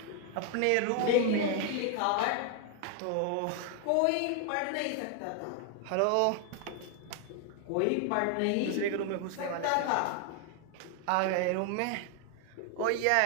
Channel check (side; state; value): both; different; correlation 0.00